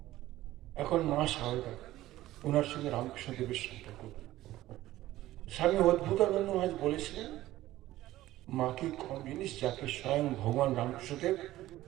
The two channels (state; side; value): quieter; left; 15.6 dB